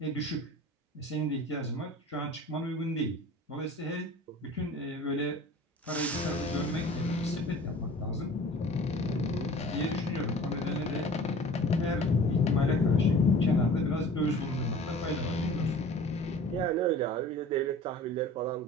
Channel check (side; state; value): both; normal; correlation 0.43